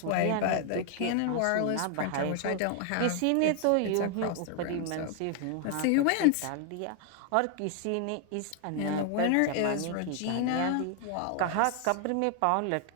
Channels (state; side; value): different; both; correlation 0.00